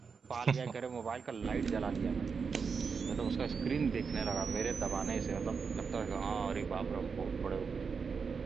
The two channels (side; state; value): left; quieter; 5.5 dB